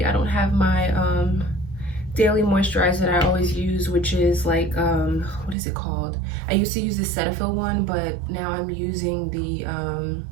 I don't have my daily moisturizer that I always use, which is like, what is it called? I used to use the Cetaphil one, but now I'm using the,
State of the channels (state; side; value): drops out; left; at 5.6 s